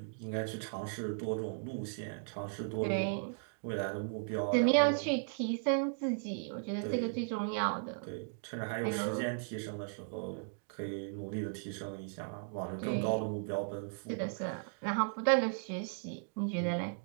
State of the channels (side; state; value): left; silent; digital silence